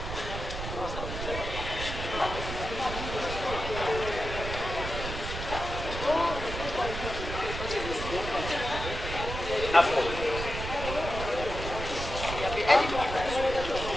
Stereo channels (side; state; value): right; noise; rumble, 6 dB below the sound